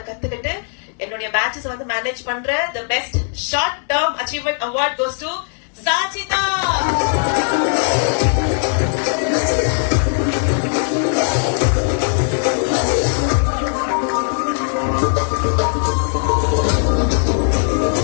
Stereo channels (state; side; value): silent; right; digital silence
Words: கத்துக்கிட்டு என்னுடைய பேட்சஸ் வந்து மேனேஜ் பண்ற the best short term achievement award goes to Sachita.